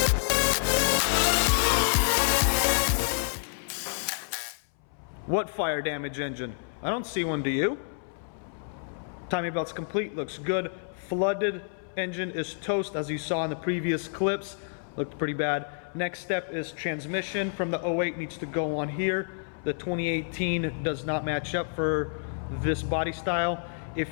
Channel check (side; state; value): right; silent; 59 dB below the other